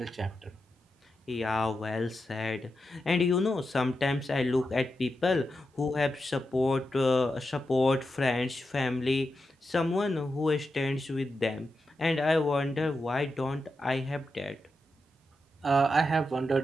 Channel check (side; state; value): both; normal; correlation 0.88